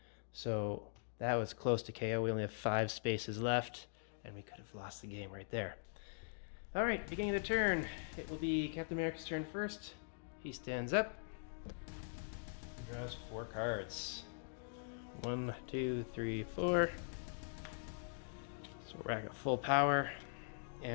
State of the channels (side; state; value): right; silent; digital silence